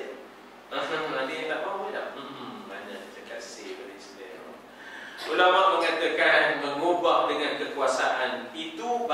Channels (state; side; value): identical; both; correlation 1.00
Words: Ada yang tak mahu tak? Banyak cakap say pada Islam. Ulama mengatakan mengubah dengan kekuasaan itu